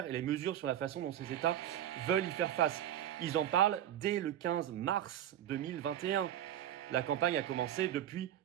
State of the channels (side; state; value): left; quieter; 11.3 dB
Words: et les mesures sur la façon dont ces États veulent y faire face. Ils en parlent dès le 15 mars 2021. La campagne a commencé depuis